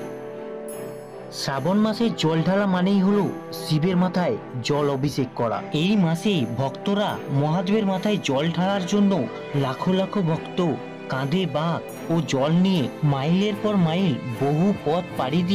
শ্রাবণ মাসে জল ঢালা মানেই হলো শিবের মাথায় জল অভিষেক করা। এই মাসে ভক্তরা মহাদেবের মাথায় জল ঢালার জন্য লাখো লাখো ভক্ত কাঁধে বাঁক ও জল নিয়ে মাইলের পর মাইল বহু পথ পাড়ি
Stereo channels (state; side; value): identical; both; correlation 1.00